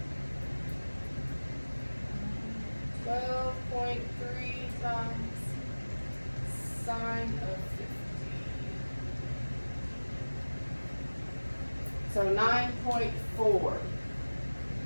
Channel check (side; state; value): both; inverted; correlation -1.00